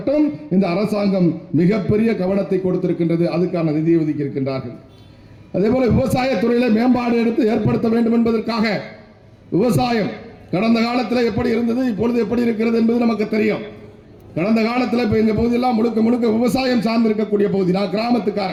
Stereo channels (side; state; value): both; identical; correlation 1.00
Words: இந்த அரசாங்கம் மிகப்பெரிய கவனத்தை கொடுத்திருக்கின்றது. அதுக்கான நிதியை ஒதுக்கி இருக்கின்றார்கள். அதே போல விவசாயத்துறையில மேம்பாடு எடுத்து ஏற்படுத்த வேண்டும் என்பதற்காக, விவசாயம் கடந்த காலத்தில் எப்படி இருந்தது, இப்பொழுது எப்படி இருக்கிறது என்பது நமக்கு தெரியும். கடந்த காலத்தில் இப்போ எங்கள் பகுதியெல்லாம் முழுக்க முழுக்க விவசாயம் சார்ந்திருக்கக்கூடிய பகுதி. நான்